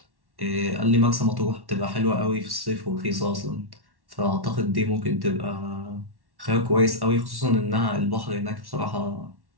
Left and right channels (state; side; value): late; left; 1.1 ms